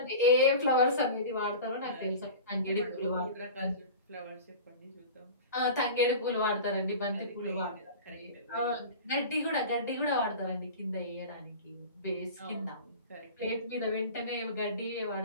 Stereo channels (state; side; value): inverted; both; correlation -0.35